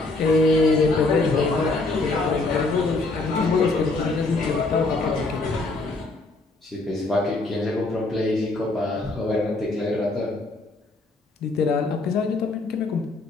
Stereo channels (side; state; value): right; quieter; 3.3 dB